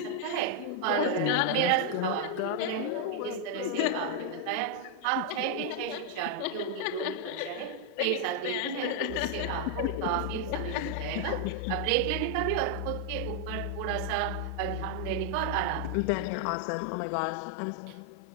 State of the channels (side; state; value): both; different; correlation 0.00